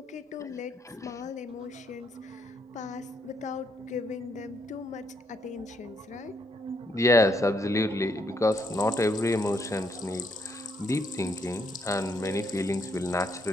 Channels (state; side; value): normal; both; correlation 0.74